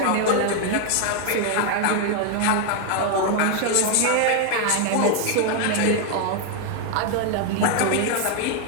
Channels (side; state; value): both; different; correlation 0.01